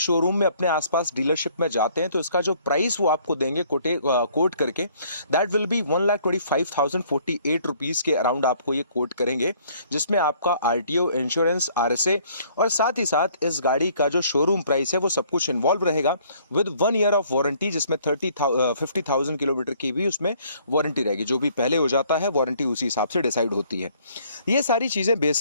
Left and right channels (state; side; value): inverted; both; correlation -0.61